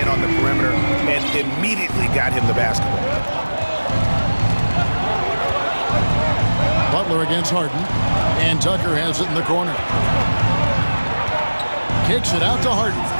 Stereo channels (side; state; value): both; inverted; correlation -1.00